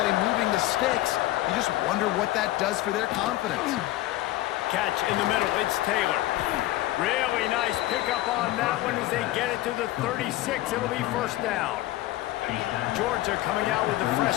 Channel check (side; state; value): right; quieter; 16.3 dB